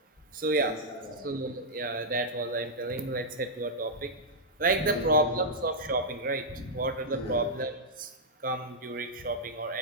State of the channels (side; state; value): both; normal; correlation -0.07